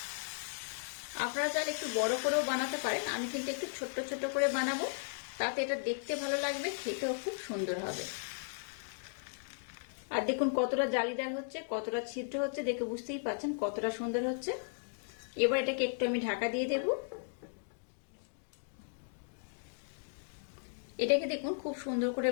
আপনারা চাইলে একটু বড় করেও বানাতে পারেন, আমি কিন্তু একটু ছোট্ট ছোট্ট করে বানাবো, তাতে এটা দেখতে ভালো লাগবে, খেতেও খুব সুন্দর হবে। আর দেখুন কতটা জালিদার হচ্ছে, কতটা ছিদ্র হচ্ছে, দেখে বুঝতেই পারছেন কতটা সুন্দর হচ্ছে। এবার এটাকে একটু আমি ঢাকা দিয়ে দেব। এটাকে দেখুন খুব সুন্দর করে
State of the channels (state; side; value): silent; right; digital silence